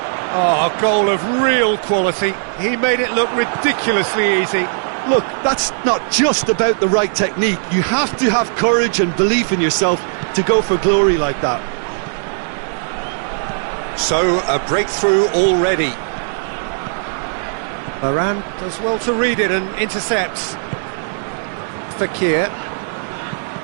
Oh, a goal of real quality. He made it look ridiculously easy. Look, that's not just about the right technique. You have to have courage and belief in yourself to go for glory like that. So, a breakthrough already. Varane does well to read it and intercepts. Fekir.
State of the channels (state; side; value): silent; left; digital silence